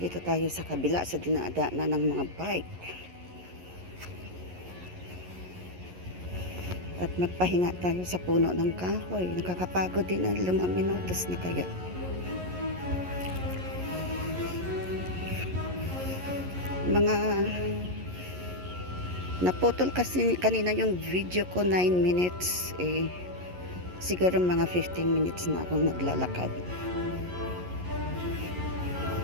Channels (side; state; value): left; late; 11 ms